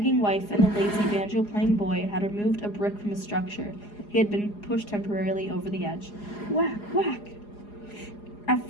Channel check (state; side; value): late; right; 4.8 ms